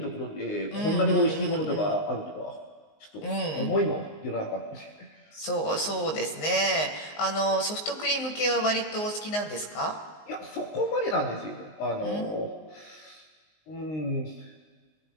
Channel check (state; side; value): late; right; 19 ms